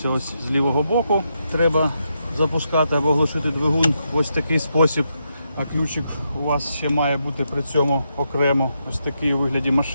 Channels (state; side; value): inverted; both; correlation -0.82